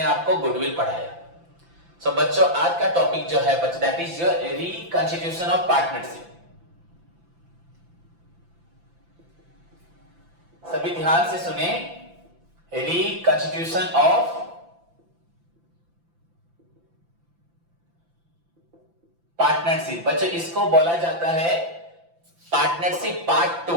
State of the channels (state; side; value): late; left; 5.9 ms